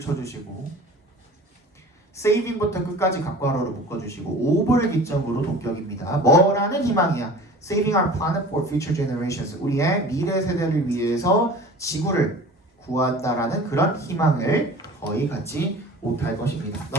saving부터 끝까지 각괄호로 묶어주시고 over를 기점으로 동격입니다. 뭐라는 희망이야? Saving our planet for future generations. 우리의 미래 세대를 위해서 지구를 구한다라는 그런 희망을 거의 갖지 못할 것입니다.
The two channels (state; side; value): normal; both; correlation 0.41